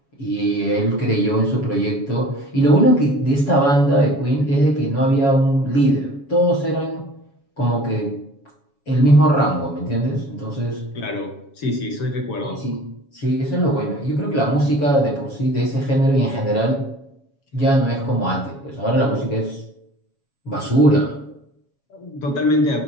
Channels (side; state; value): right; late; 7.2 ms